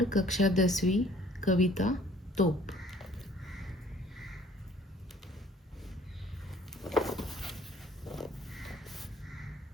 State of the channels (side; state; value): both; normal; correlation 0.55